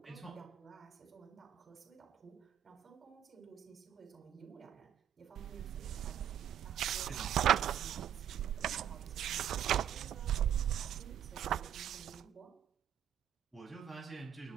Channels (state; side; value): quieter; left; 10.0 dB